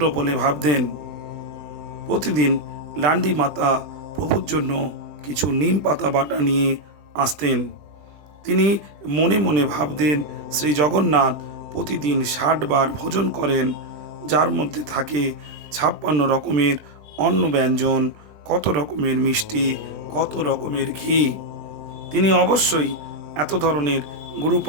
বলে ভাবতেন। প্রতিদিন লান্ডি মাতা প্রভুর জন্য কিছু নিম পাতা বাটা নিয়ে আসতেন। তিনি মনে মনে ভাবতেন, শ্রী জগন্নাথ প্রতিদিন ৬০ বার ভোজন করেন, যার মধ্যে থাকে ৫৬ রকমের অন্ন ব্যঞ্জন, কত রকমের মিষ্টি, কত রকমের ঘি। তিনি অবশ্যই এত ধরনের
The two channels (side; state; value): left; late; 20 ms